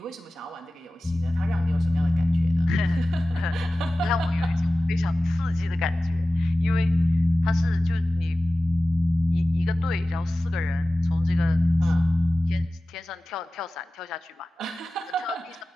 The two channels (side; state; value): both; normal; correlation 0.96